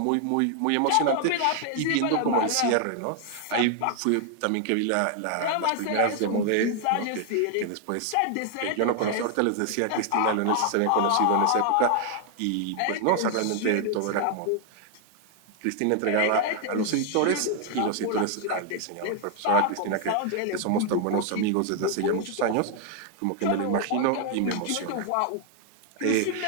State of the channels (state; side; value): different; both; correlation 0.00